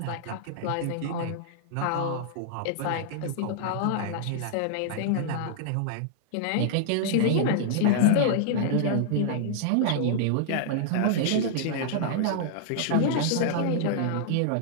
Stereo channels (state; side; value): different; both; correlation -0.01